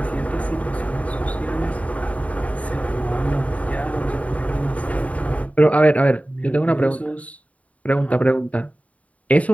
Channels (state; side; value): late; right; 0.068 ms